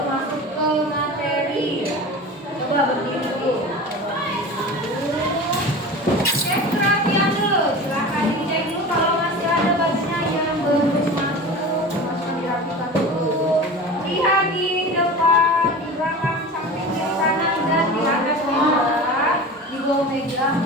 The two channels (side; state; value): both; normal; correlation 0.33